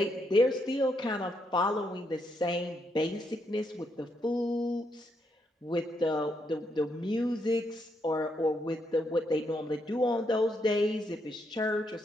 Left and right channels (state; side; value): normal; both; correlation 0.78